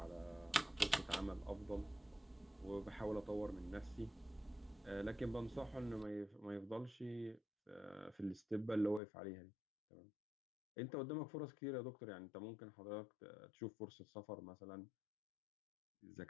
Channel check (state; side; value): drops out; right; at 9.0 s